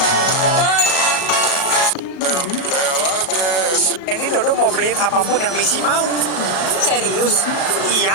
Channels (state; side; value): late; right; 37 ms